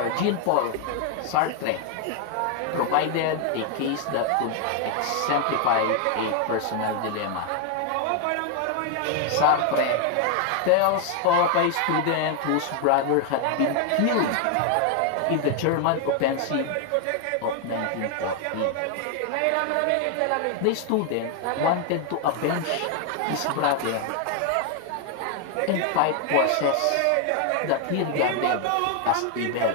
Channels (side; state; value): both; different; correlation 0.01